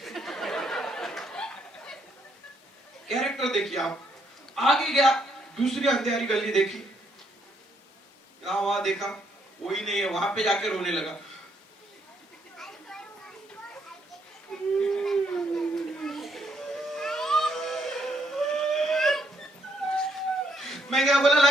कैरेक्टर देखिए आप। आगे गया, दूसरी अंधेरी गली देखी, यहाँ वहां देखा कोई नहीं है, वहां पे जाके रोने लगा। मैं क्या बोला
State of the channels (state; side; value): normal; both; correlation 0.73